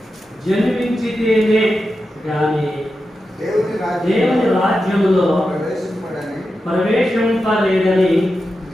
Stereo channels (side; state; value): both; normal; correlation 0.90